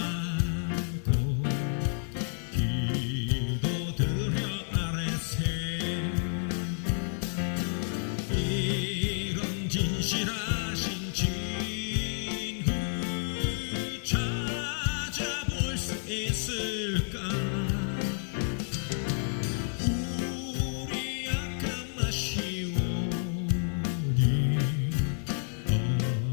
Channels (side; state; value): right; silent; digital silence